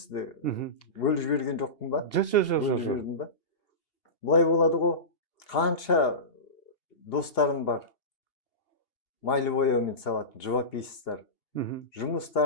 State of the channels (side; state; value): right; late; 2.8 ms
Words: Бөліп жіберген жоқпын ба? Бөліп жібердім ба? Бұлай болады ғой, қанша достарым бар, майлы бояумен салатын живописцтар.